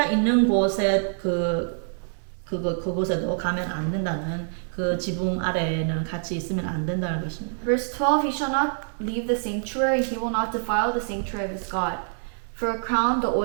있는 곳에 그곳에도 가면 안 된다는 그 지붕 아래에는 같이 있으면 안 된다는 것입니다. Verse 12, he shall not leave the sanctuary, he will not defile the sanctuary of his God. For a crown, the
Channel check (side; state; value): left; silent; 58 dB below the other